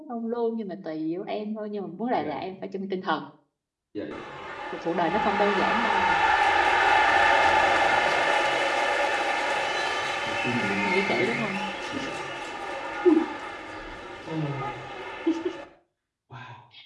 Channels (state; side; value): identical; both; correlation 1.00